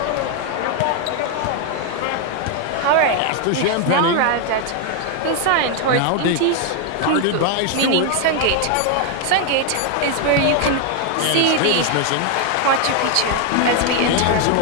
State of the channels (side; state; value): both; different; correlation 0.01